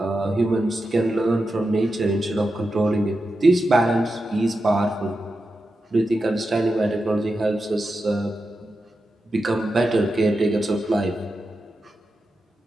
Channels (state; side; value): normal; both; correlation 0.90